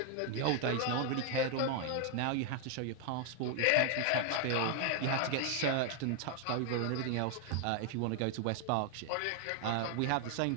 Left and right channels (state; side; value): different; both; correlation 0.00